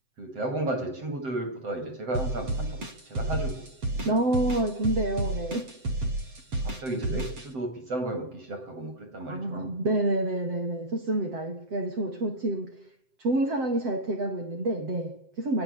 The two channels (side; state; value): left; late; 7.7 ms